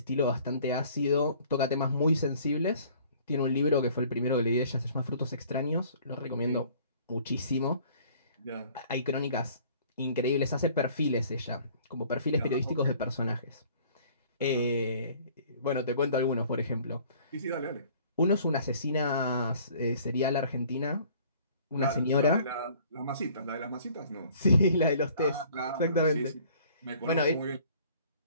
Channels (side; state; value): both; inverted; correlation -0.54